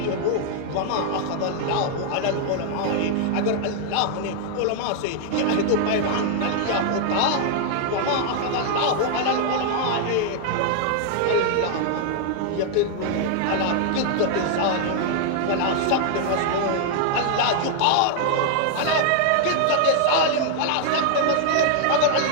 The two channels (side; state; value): both; different; correlation 0.00